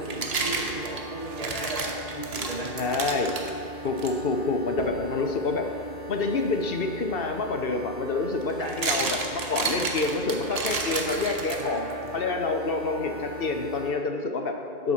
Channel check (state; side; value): late; right; 1.8 ms